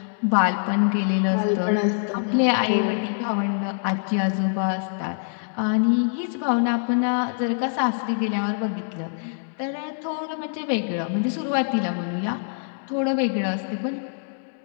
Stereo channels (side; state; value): right; silent; digital silence